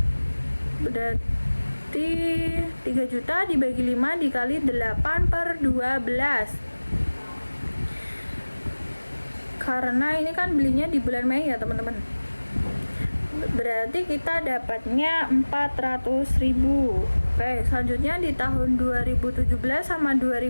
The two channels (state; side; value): inverted; both; correlation -1.00